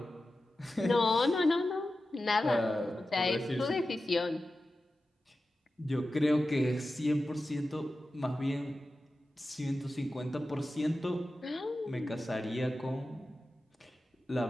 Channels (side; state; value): both; normal; correlation 0.93